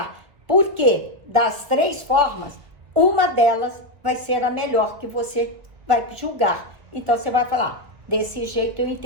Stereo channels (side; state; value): left; late; 1.8 ms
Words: Porque das 3 formas, uma delas vai ser a melhor que você vai julgar. Então, você vai falar, desse jeito eu